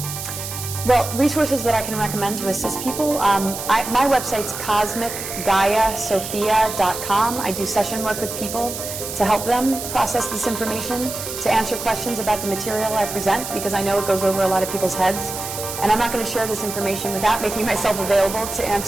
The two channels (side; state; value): right; noise; hiss, 7 dB below the sound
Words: well, resources that I can recommend to assist people, my website's cosmicgaiasophia.com. I do session work with people to help them process this information, to answer questions about the material I present, because I know it goes over a lot of people's heads. And I'm not going to share this information without making myself available to